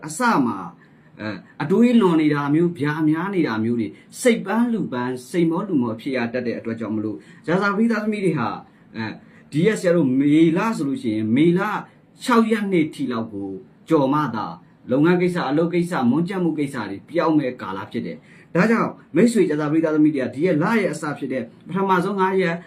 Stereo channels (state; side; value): identical; both; correlation 1.00